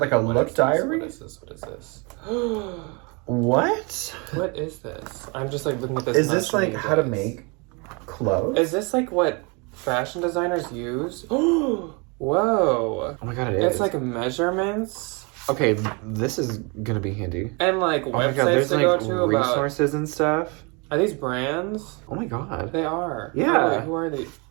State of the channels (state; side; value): quieter; left; 30.8 dB